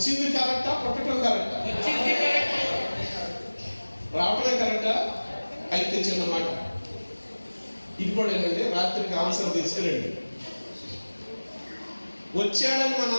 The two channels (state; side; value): inverted; both; correlation -1.00